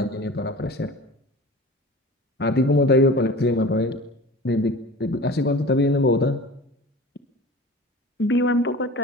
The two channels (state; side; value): normal; both; correlation 0.38